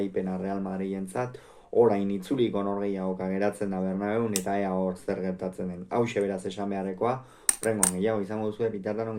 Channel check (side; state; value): both; identical; correlation 1.00